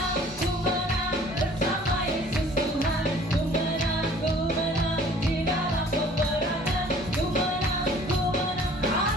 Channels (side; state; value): both; normal; correlation 0.52